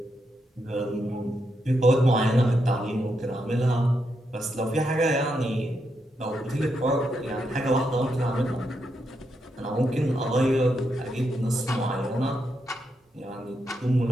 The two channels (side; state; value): both; normal; correlation 0.82